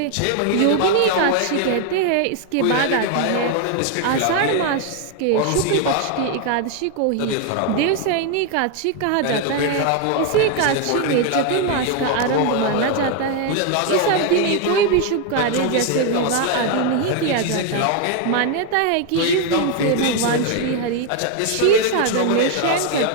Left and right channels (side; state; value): both; different; correlation 0.01